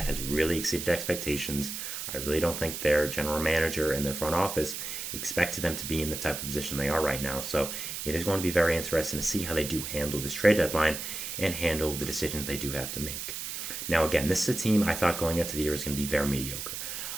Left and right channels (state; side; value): noise; right; hiss, 6 dB below the sound